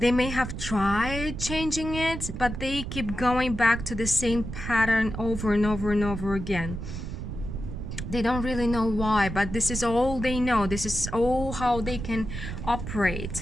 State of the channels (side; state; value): right; noise; rumble, 7 dB below the sound